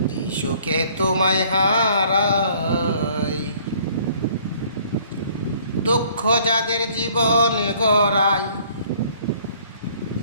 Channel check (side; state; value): both; inverted; correlation -0.58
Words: যে সুখে তোমায় হারাই। দুঃখ যাদের জীবন গড়ায়,